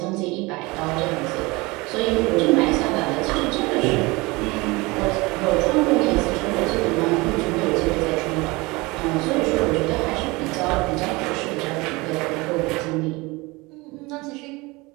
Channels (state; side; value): quieter; left; 23.8 dB